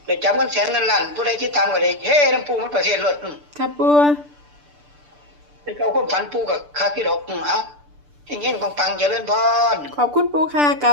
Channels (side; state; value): left; late; 6.8 ms